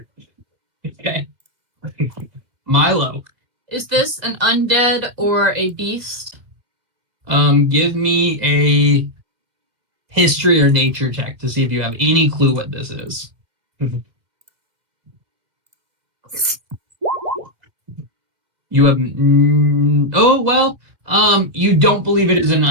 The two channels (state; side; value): late; left; 2.1 ms